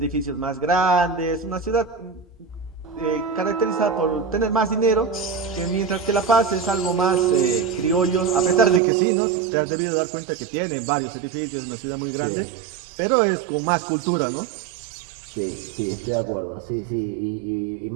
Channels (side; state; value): left; drops out; at 8.8 s